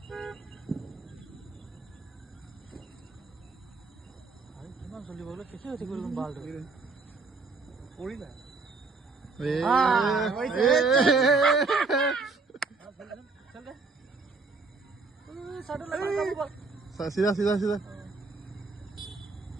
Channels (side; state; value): left; quieter; 4.1 dB